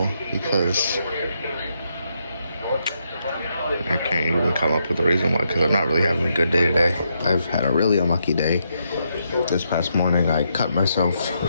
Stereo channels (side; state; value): both; inverted; correlation -0.80